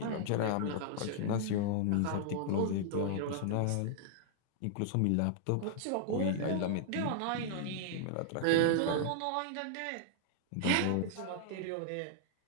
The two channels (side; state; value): both; different; correlation -0.01